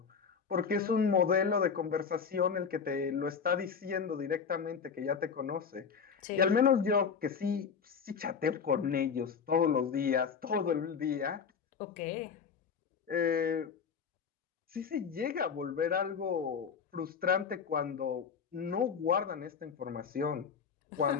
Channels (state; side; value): quieter; right; 6.3 dB